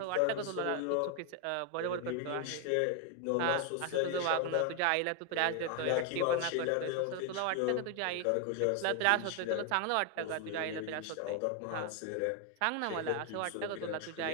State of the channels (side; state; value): both; different; correlation 0.01